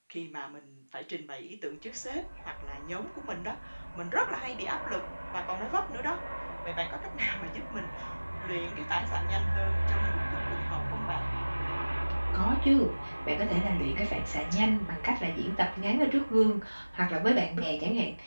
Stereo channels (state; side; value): inverted; both; correlation -1.00